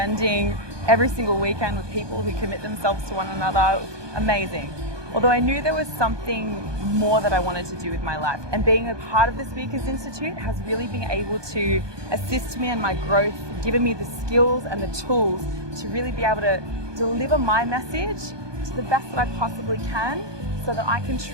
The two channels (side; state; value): left; late; 1.2 ms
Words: every single weekend with people who commit themselves to one another. It was amazing. although I knew there was something more that I wanted to do with my life. And being a part of the Speakers Institute has really been able to assist me in my growth, given me the skills and the tools to really be able to deliver my message to the best that I possibly can, so that I can